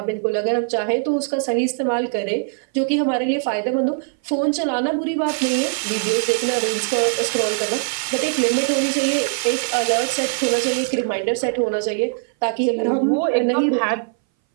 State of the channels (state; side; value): silent; left; 61 dB below the other